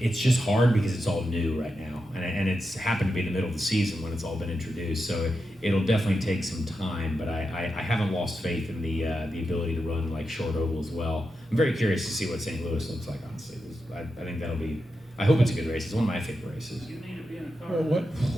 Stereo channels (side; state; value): both; normal; correlation 0.88